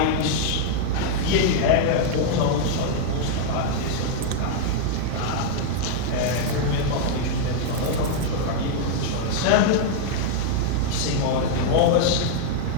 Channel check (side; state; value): both; different; correlation -0.01